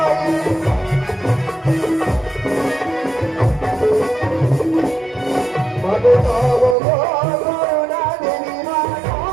মাগো তব করুণা দেবী মা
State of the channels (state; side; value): drops out; left; at 6.8 s